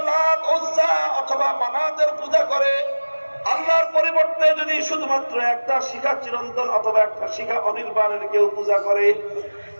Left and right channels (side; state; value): both; inverted; correlation -1.00